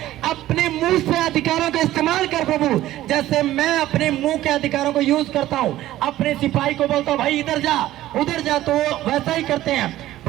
अपने मुंह से अधिकारों का इस्तेमाल कर प्रभु। जैसे मैं अपने मुंह के अधिकारों को यूज करता हूं, अपने सिपाही को बोलता हूं भाई इधर जा उधर जा, तो वो वैसा ही करते हैं।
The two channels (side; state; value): left; quieter; 14.6 dB